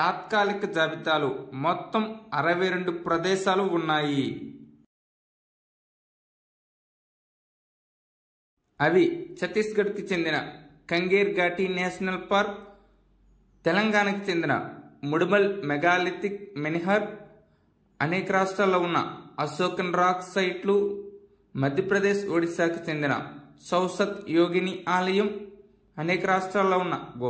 జాబితాలో మొత్తం 62 ప్రదేశాలు ఉన్నాయి. అవి ఛత్తీస్గఢ్కి చెందిన కంగేర్ ఘాటీ నేషనల్ పార్క్, తెలంగాణకు చెందిన ముడుమల్ మెగాలిథిక్ మెన్హర్, అనేక రాష్ట్రాల్లో ఉన్న అశోకన్ రాక్ సైట్లు, మధ్యప్రదేశ్ ఒడిశాకు చెందిన సౌసత్ యోగిని ఆలయం, అనేక రాష్ట్రాల్లో ఉన్న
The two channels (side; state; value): both; identical; correlation 1.00